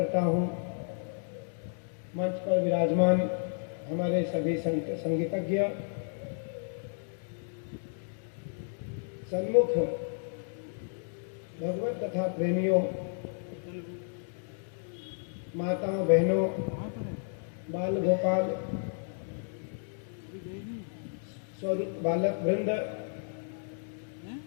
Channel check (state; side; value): silent; right; digital silence